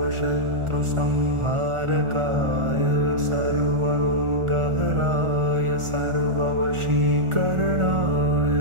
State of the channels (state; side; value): late; left; 1.4 ms